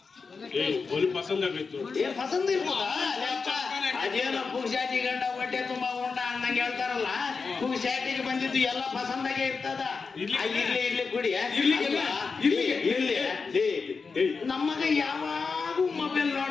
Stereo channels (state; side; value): quieter; right; 4.8 dB